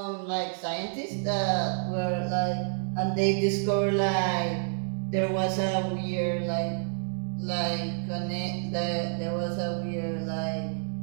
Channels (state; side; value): silent; left; digital silence